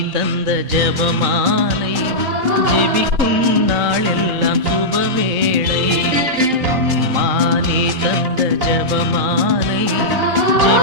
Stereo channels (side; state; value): left; late; 3.9 ms